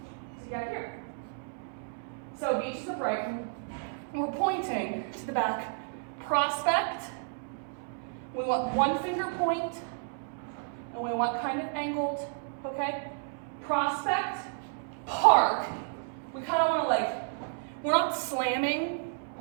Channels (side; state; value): left; silent; 57 dB below the other